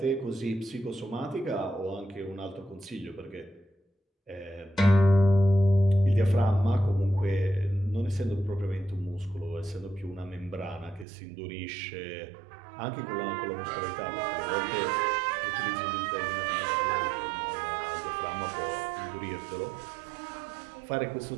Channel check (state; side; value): drops out; left; at 11.1 s